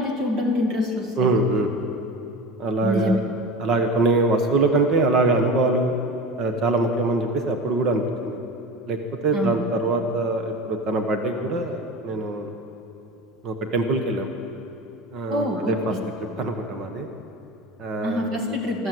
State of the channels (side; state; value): both; normal; correlation 0.31